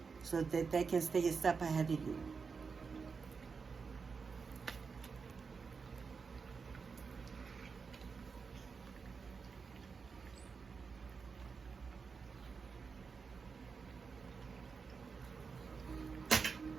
so that they can stay a step ahead of you.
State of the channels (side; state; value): left; quieter; 5.2 dB